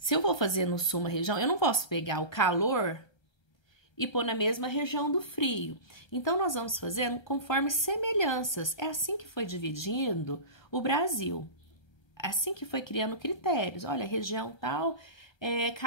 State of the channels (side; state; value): right; late; 1.3 ms